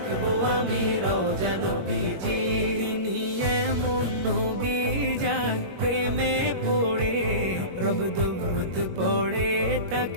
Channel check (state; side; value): late; left; 21 ms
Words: আমি রওজা নবীজি। তিনি এমন নবী যার প্রেমে পড়ে রব দরুদ পড়ে